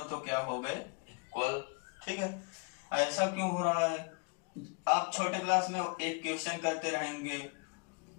तो क्या हो गए, इक्वल। ठीक है, ऐसा क्यों हो रहा है, आप छोटे क्लास में एक क्वेश्चन करते रहेंगे,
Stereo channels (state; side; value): quieter; right; 34.3 dB